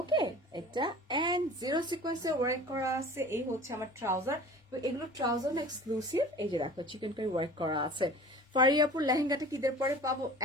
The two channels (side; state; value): both; normal; correlation 0.42